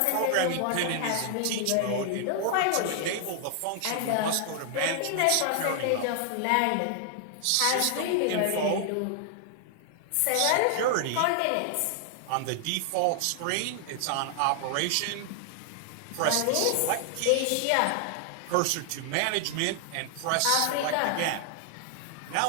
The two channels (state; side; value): different; both; correlation 0.00